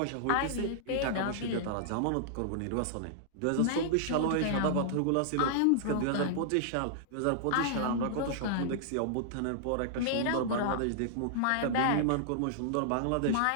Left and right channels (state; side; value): different; both; correlation -0.01